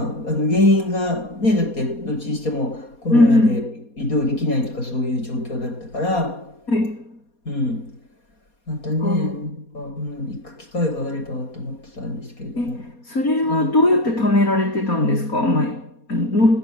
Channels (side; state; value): right; late; 4.2 ms